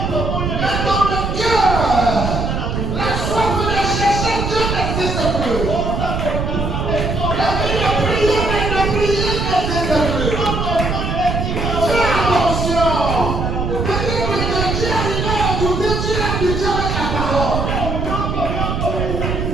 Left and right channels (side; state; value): right; noise; rumble, 2 dB below the sound